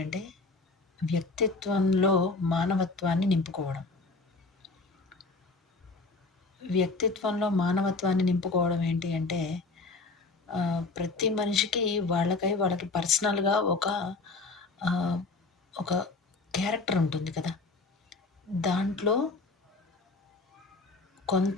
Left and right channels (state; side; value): quieter; right; 3.7 dB